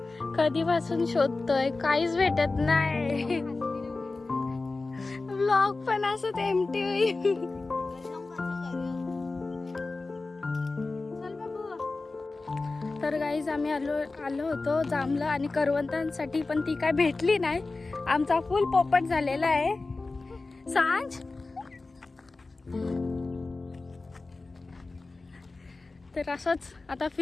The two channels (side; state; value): right; quieter; 3.5 dB